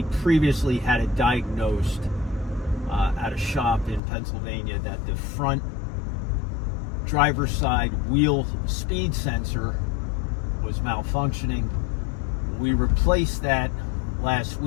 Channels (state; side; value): drops out; right; at 4.0 s